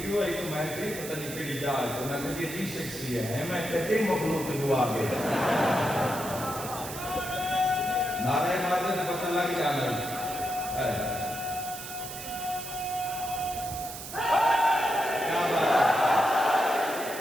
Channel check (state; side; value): noise; right; hiss, 10 dB below the sound